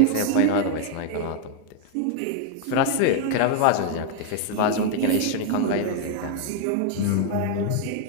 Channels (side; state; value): both; different; correlation 0.00